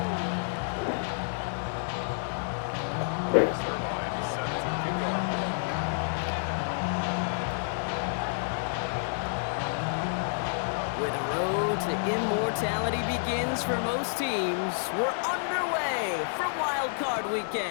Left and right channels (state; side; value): silent; right; digital silence